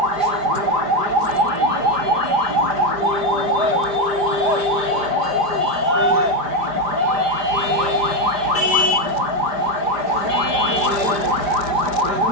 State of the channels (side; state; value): left; late; 5.0 ms